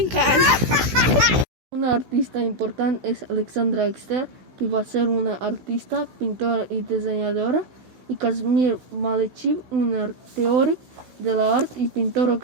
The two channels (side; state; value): left; late; 16 ms